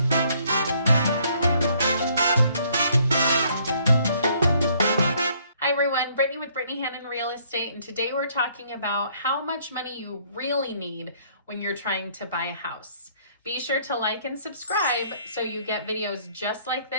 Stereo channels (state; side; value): inverted; both; correlation -0.64